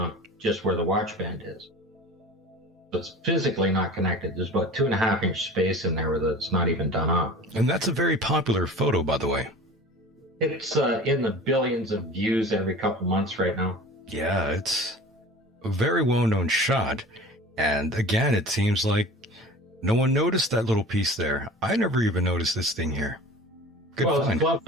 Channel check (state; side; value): normal; both; correlation 0.39